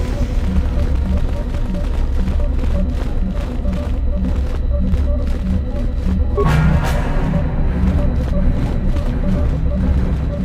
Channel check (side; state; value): both; identical; correlation 1.00